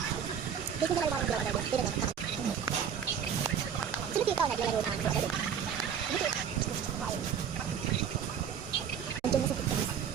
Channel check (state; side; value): quieter; left; 8.0 dB